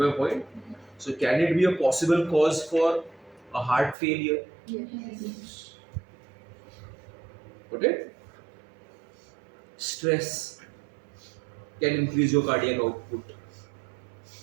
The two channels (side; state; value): left; drops out; at 4.0 s